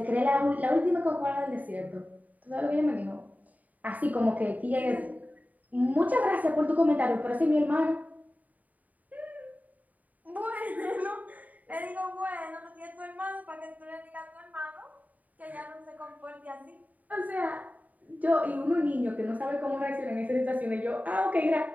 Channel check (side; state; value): left; late; 0.074 ms